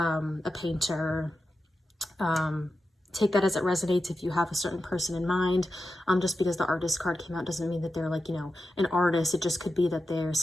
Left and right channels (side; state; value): both; normal; correlation 0.91